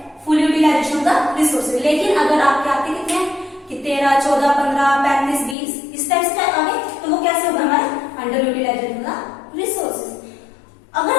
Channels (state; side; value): drops out; right; at 5.6 s